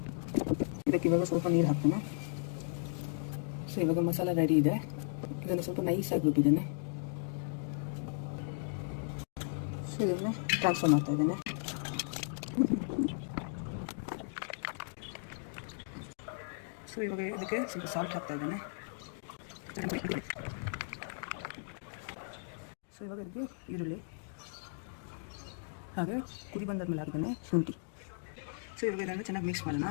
ಇದಕ್ಕೆ ಇವಾಗ ಸ್ವಲ್ಪ ನೀರು ಹಾಕ್ತೇನೆ. ಸೊ ಇವಾಗ ಮಸಾಲೆ ರೆಡಿ ಇದೆ. ಇದನ್ನು ಸ್ವಲ್ಪ ನೈಸಾಗಿ ರುಬ್ಬಿದ್ದೇನೆ. ಸೊ ಇದನ್ನು ಟ್ರಾನ್ಸ್ಫರ್ ಮಾಡ್ತಾ ಇದ್ದೇನೆ. ಸೊ ಇವಾಗ ಇದಕ್ಕೆ ಸ್ವಲ್ಪ ಸಾಲ್ಟ್ ಹಾಕ್ತಾ ಇದ್ದೇನೆ. ಸೊ ಇವಾಗ ಇದಕ್ಕೆ ಈರುಳ್ಳಿ, ಹಾಗೆ ಕುದಿ ಬಂದಾದ್ಮೇಲೆ ಹಾಕಿದ್ದೇನೆ ಶುಂಠಿ. ಸೊ ಇವಾಗ ಇದನ್ನು ಚೆನ್ನಾಗಿ ಮಿಕ್ಸ್ ಮಾಡೋಣ.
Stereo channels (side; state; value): right; silent; digital silence